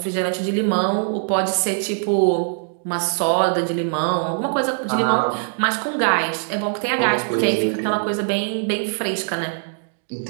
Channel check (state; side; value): silent; left; digital silence